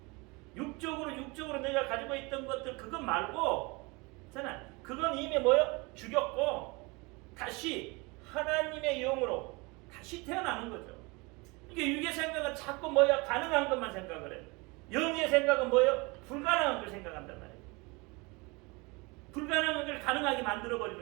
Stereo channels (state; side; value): quieter; left; 26.7 dB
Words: 육적으로 내가 가지고 있던 것들 그거 말고, 있잖아. 그건 이미 뭐요? 죽였고 다시 하나님의 영으로 다시 태어나는 거죠. 이게 육의 생각은 자꾸 뭐야? 가능한 것만 생각을 해요. 영의 생각은 뭐예요? 불가능한 걸 생각한단 말이에요. 불가능한 걸 가능하게